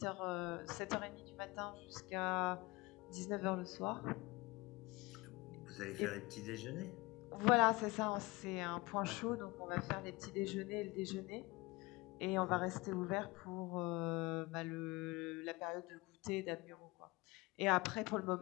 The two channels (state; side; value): quieter; right; 23.5 dB